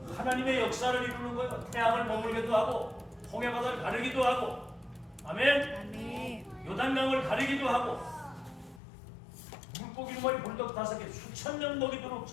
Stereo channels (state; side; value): drops out; right; at 8.8 s